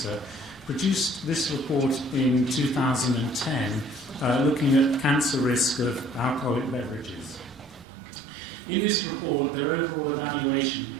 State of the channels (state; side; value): drops out; left; at 7.9 s